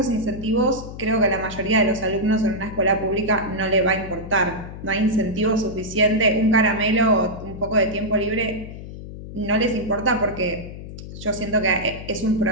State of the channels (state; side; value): noise; left; hum, 11 dB below the sound